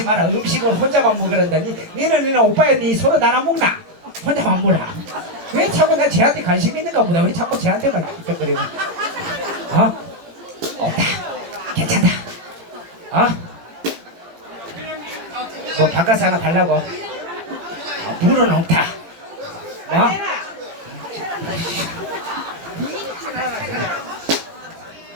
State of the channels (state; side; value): late; left; 17 ms